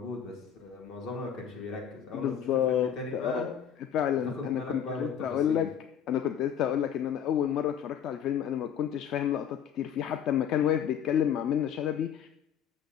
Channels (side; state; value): right; quieter; 8.7 dB